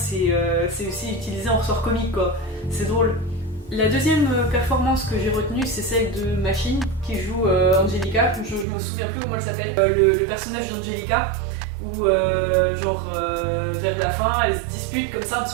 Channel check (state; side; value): drops out; left; at 8.7 s